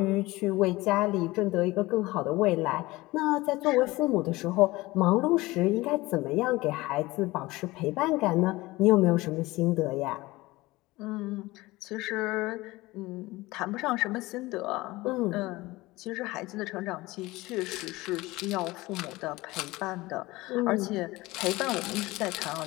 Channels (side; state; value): right; quieter; 20.2 dB